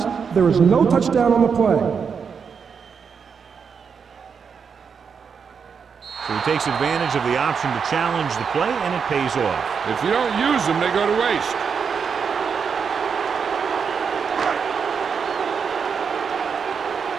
There is no touchdown on the play. So he takes advantage of the option to challenge the play, and it pays off. If you don't use them, they go to waste.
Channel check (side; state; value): left; quieter; 6.3 dB